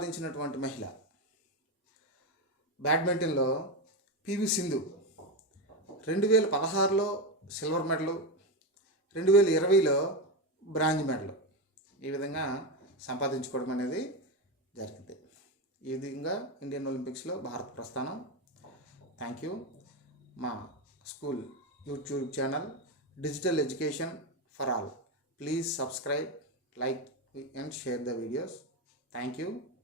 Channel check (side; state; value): both; normal; correlation 0.13